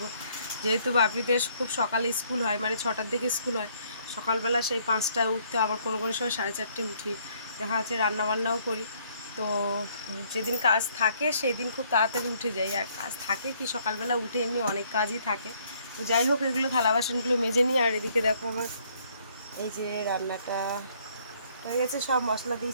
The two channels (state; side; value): inverted; both; correlation -0.65